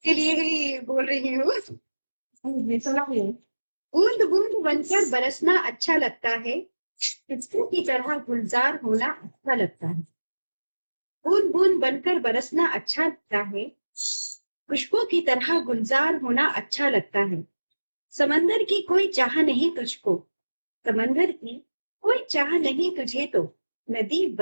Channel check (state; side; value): inverted; both; correlation -1.00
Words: लिए ही बोल रही हूँ। बूंद बूंद बनकर बरसना अच्छा लगता है, खुशबू की तरह गुलजार होना अच्छा लगता है। बूंद बूंद बनकर बरसना अच्छा लगता है, खुशबू की तरह गुलजार होना अच्छा लगता है। समंदर की कोई चाह नहीं तुझको, समंदर की कोई चाह नहीं तुझे, तो नदी